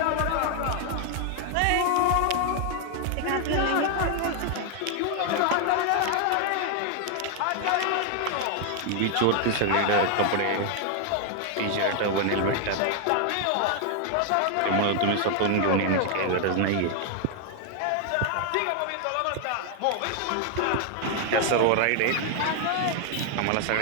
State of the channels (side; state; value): both; different; correlation 0.00